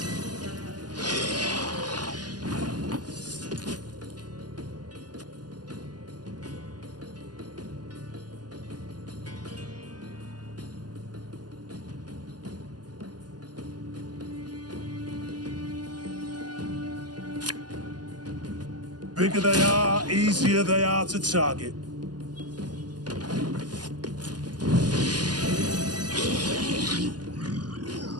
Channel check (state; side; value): late; left; 0.70 ms